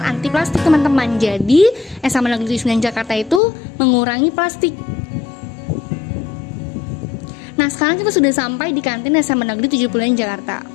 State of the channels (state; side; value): drops out; right; at 3.4 s